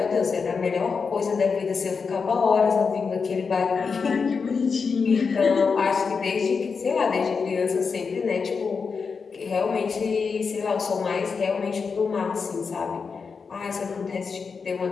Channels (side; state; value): right; quieter; 5.3 dB